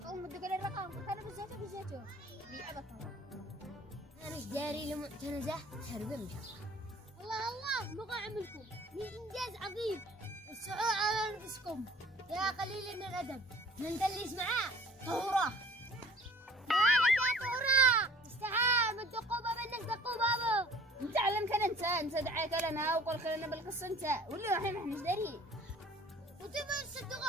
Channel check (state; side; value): normal; both; correlation 0.50